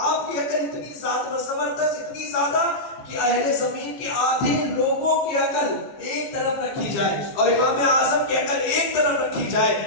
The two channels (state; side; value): late; right; 15 ms